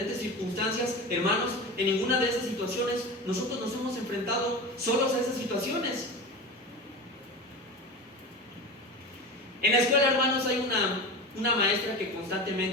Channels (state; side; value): normal; both; correlation 0.27